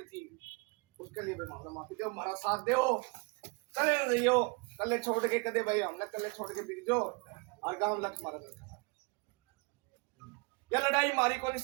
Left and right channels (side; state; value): left; quieter; 30.0 dB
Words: थी उसके लिए मामला माफी दो, हमारा साथ दो, कले रहियो, कले छोड़ के कदे भाई हमने कले छोड़ के बीत दो और गांव लक्ष्य मारा। यह लड़ाई हमारी को नहीं,